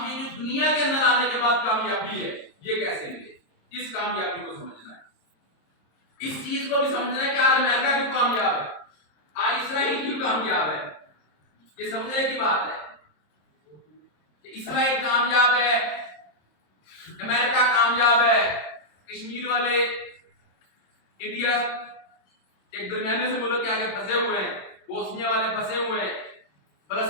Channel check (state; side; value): late; right; 26 ms